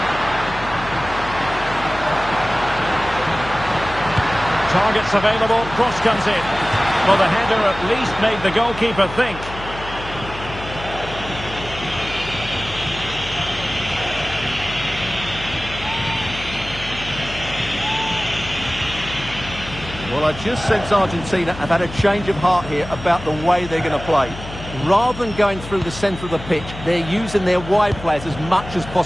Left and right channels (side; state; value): left; noise; hum, 12 dB below the sound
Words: Targets available, cross comes in. Well, the header at least made the goalkeeper think. Well, I just sense Argentina have had a change of heart here about the way they're going to play. Rather than going through the centre of the pitch, they're using their wide players as much as